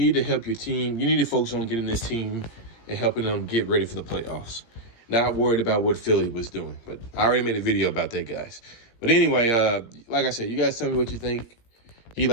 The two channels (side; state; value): right; late; 17 ms